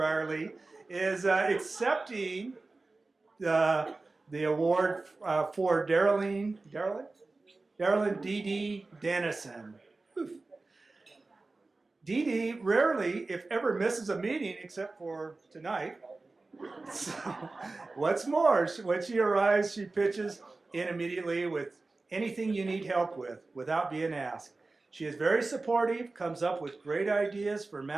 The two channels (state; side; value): quieter; left; 3.4 dB